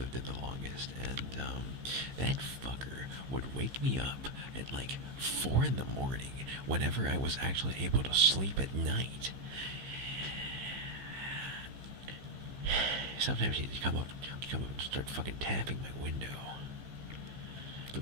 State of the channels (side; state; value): left; late; 15 ms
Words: in the longest, and that fucker would wake me up at like 4 in the morning whenever I was actually able to sleep at night. Sometimes he'd come up and start fucking tapping my window. But